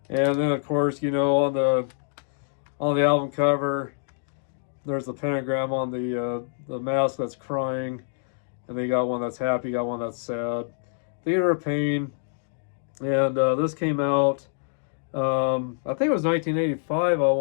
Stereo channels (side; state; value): right; silent; digital silence